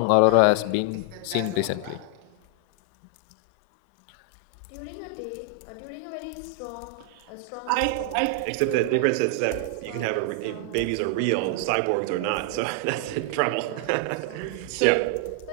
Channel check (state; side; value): different; both; correlation 0.00